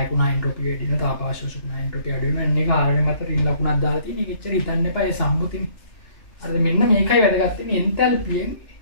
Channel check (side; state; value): right; late; 2.7 ms